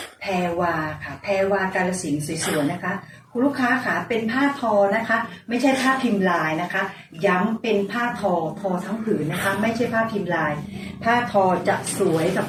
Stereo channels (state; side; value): identical; both; correlation 1.00